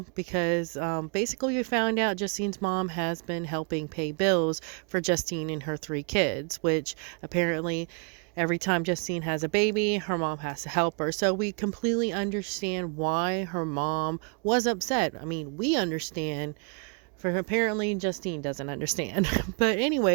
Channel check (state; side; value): quieter; left; 39.1 dB